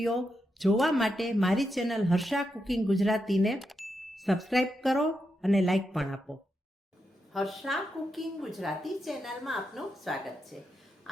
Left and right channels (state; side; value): normal; both; correlation 0.85